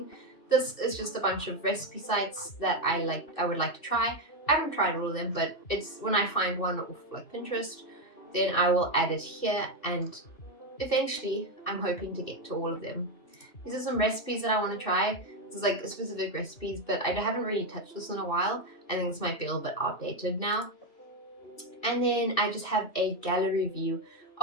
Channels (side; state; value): right; late; 2.7 ms